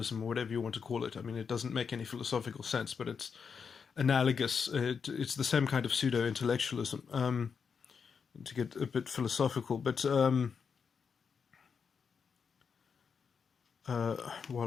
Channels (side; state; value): right; quieter; 6.1 dB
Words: or whatever you want to call it. I mean, it doesn't make any philosophical sense, but it's analogous. It's the same kind of pseudo-intellectualism, to get a bit philosophical. But